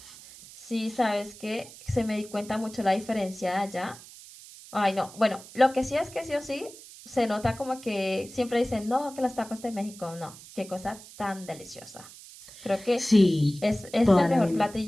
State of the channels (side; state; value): right; noise; hiss, 18 dB below the sound